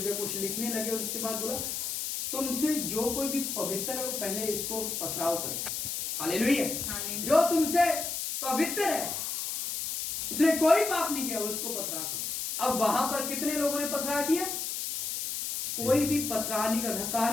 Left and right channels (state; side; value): noise; left; hiss, 3 dB below the sound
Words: कुछ लिखने लगे और उसके बाद बोला, तुमसे जो कोई भी पवित्र है वो पहले इसको पथराव करे। हालेलुया। जो तुमसे पवित्र है, उसने कोई पाप नहीं किया, उसको पथराव करो। अब वहां पर कितने लोगों ने पथराव किया? कोई भी पथराव नहीं कर रहा।